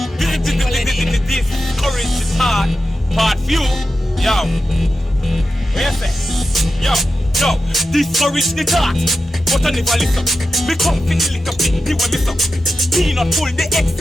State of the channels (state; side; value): normal; both; correlation 0.91